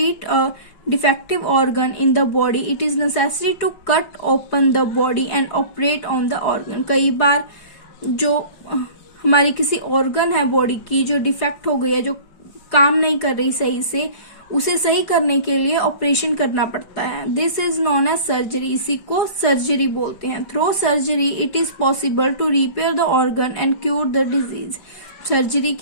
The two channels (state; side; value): late; right; 5.2 ms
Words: a defective organ in the body it is necessary to cut open the body and operate on the organ। कई बार जो हमारी किसी ऑर्गन है बॉडी की जो डिफेक्ट हो गई है जो काम नहीं कर रही सही से उसे सही करने के लिए ऑपरेशन करना पड़ता है। This is known as surgery. इसी को सर्जरी बोलते हैं। Through surgery it is possible to repair the organ and cure the disease. Surgery